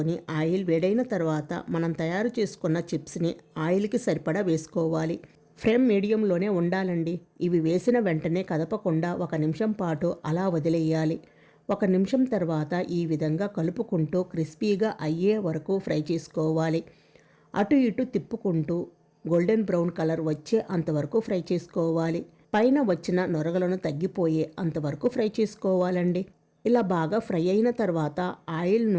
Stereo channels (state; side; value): identical; both; correlation 1.00